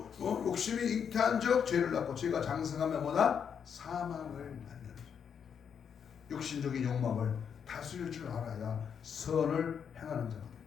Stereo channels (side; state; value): right; quieter; 7.4 dB